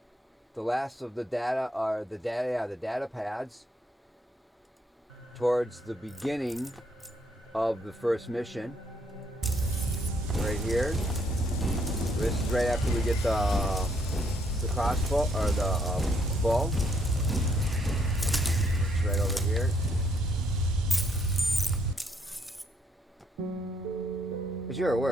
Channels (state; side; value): normal; both; correlation 0.71